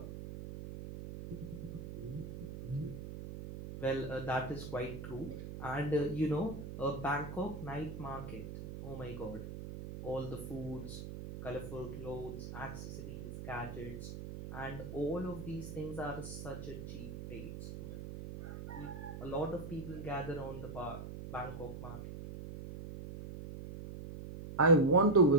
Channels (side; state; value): right; noise; hum, 8 dB below the sound